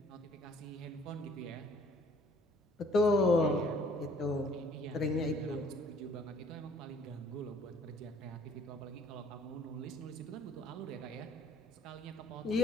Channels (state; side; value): normal; both; correlation 0.59